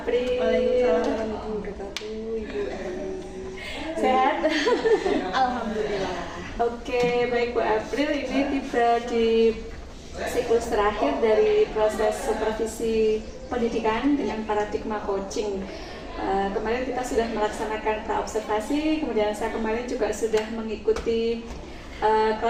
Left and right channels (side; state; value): both; identical; correlation 1.00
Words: Waalaikumsalam warahmatullahi wabarakatuh, Ibu Eli. Sehat? Alhamdulillah. Oke, baik Bu April, ini tiba di siklus terakhir dari proses supervisi pendidikan dengan paradigma coaching. Kemarin kita sudah melaksanakan pra-observasi, kemudian saya kemarin juga sudah mengikuti